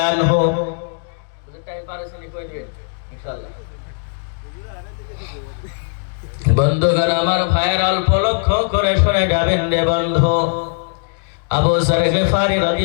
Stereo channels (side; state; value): right; silent; digital silence